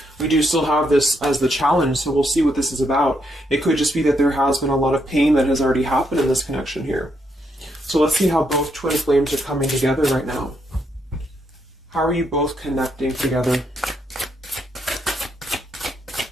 We do still have this as the challenge, so we'll see what this is about. It could just be that there has been a lot of pain that has already happened in this connection here. So let's see how both twin flames are coming together right now. How are you both connecting together?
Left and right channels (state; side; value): normal; both; correlation 0.77